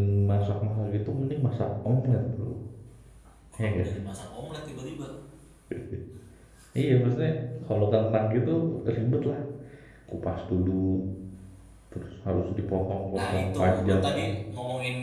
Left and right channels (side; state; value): both; identical; correlation 1.00